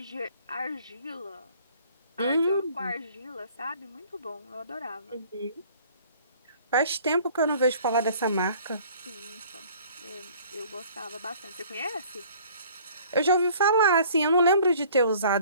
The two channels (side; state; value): both; inverted; correlation -0.53